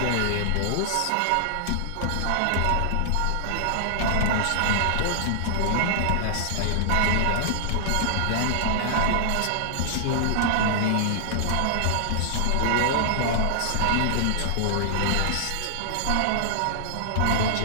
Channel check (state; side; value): different; both; correlation -0.01